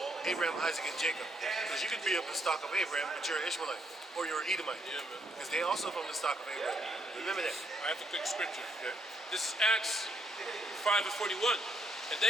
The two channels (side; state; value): both; normal; correlation 0.73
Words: Abraham, Isaac, and Jacob. Because you could be of the stock of Abraham, but you're an Ishmaelite, or you're an Edomite. Yeah, man. Because they also from the stock of Abraham. Remember that. I have a quick scripture. Okay. This is Acts 5 and 41. And